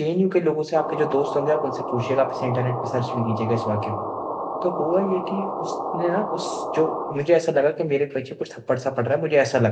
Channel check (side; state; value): both; identical; correlation 1.00